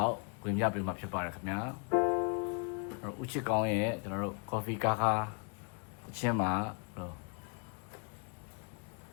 က်ဝင်ပြပေးမှာဖြစ်ပါတယ်ခင်ဗျာဦးချစ်ကောင်းရဲ့ကျွန်တော်တို့ coffee ကားခါအချင်းမှာ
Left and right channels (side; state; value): right; quieter; 38.0 dB